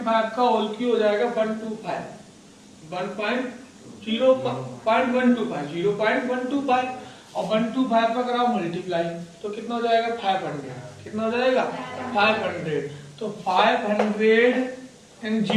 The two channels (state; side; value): identical; both; correlation 1.00